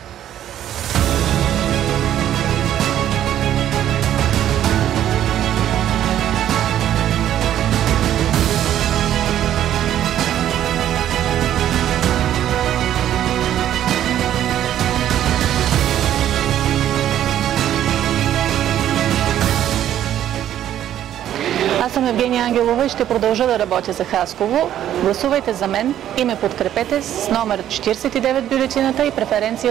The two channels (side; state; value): left; quieter; 11.4 dB